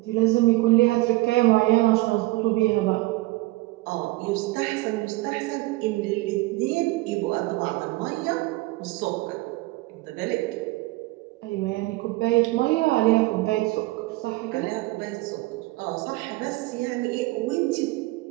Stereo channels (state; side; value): quieter; left; 20.6 dB